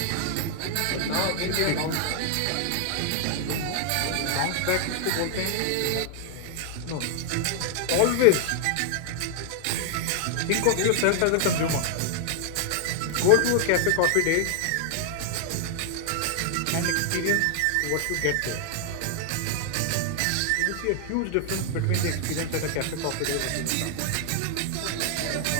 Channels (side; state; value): both; different; correlation 0.00